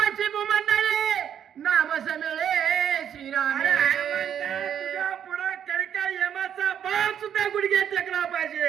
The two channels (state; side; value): quieter; left; 9.1 dB